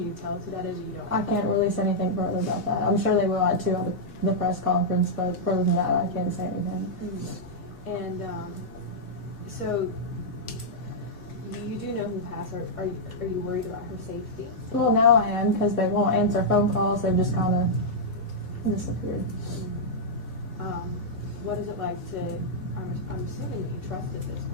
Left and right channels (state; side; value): normal; both; correlation -0.08